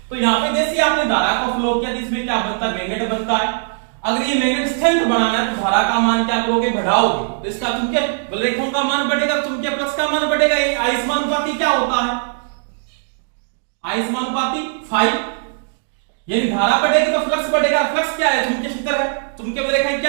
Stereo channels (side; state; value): left; silent; digital silence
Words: तो यहाँ पे जैसे आपने धारा को फ्लो किया, इसमें क्या बनता है, मैग्नेट बनता है। अगर ये मैग्नेट स्ट्रेंथ बढ़ाना है तो धारा का मान क्या करोगे, बढ़ाओगे, तो इसका चुंबकीय बलरेखाओं का मान बढ़ेगा, चुंबकीय फ्लक्स का मान बढ़ेगा। ये आयस्मानुपाती क्या होता है, आयस्मानुपाती 5, यानी धारा बढ़ेगी तो फ्लक्स बढ़ेगा। फ्लक्स क्या है, चुंबकीय क्षेत्र है, चुंबकीय बलरेखाएं